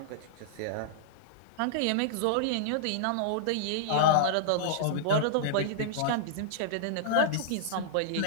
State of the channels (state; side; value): different; both; correlation -0.02